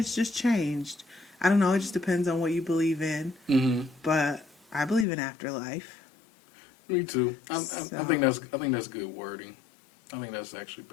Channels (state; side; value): drops out; right; at 5.1 s